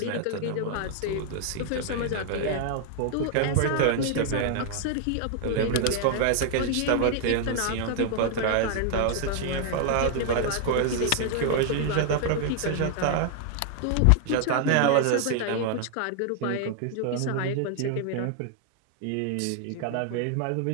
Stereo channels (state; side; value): different; both; correlation 0.00